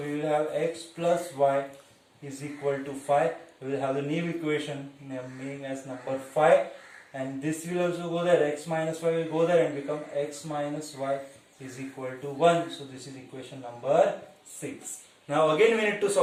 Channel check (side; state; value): both; identical; correlation 1.00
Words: will have x plus y is equal to 5. We will have the new equation naming as number 5, and this will also go there. X minus y will go there and become x minus y is equal to 1. So this is equation number 6. Now again we need to